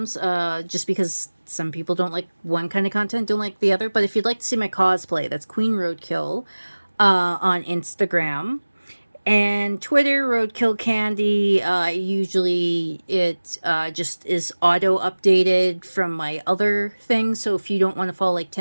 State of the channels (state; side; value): inverted; both; correlation -1.00